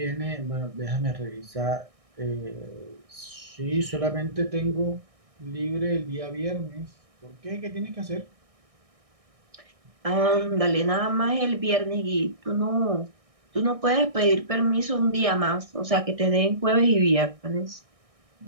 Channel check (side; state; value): left; late; 1.6 ms